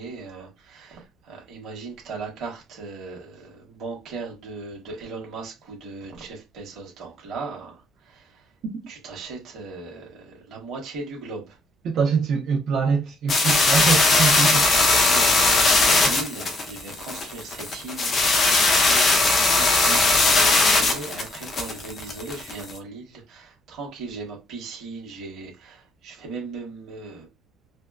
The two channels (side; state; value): both; normal; correlation 0.68